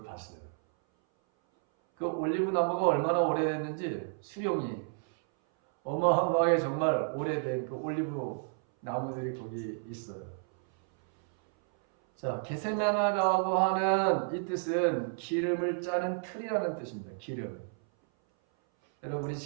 봤어요. 그 올리브 나무가 얼마나 오래됐는지 수령이 어마어마하게 정말 오래된 그 올리브 나무들이 거기 있어요. 자, 겟세마네라고 하는 이 뜻은 기름을 짜는 틀이라는 뜻입니다. 기름. 여러분 우리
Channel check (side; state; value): left; silent; 57 dB below the other